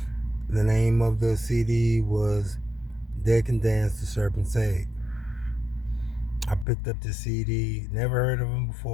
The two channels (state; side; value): drops out; right; at 6.7 s